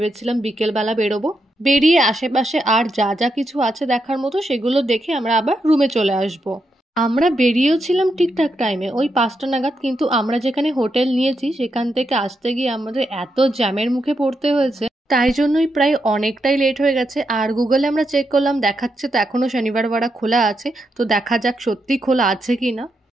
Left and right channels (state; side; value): normal; both; correlation 0.83